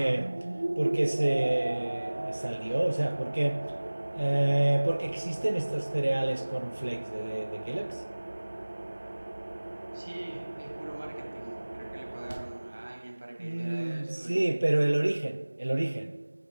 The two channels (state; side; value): inverted; both; correlation -1.00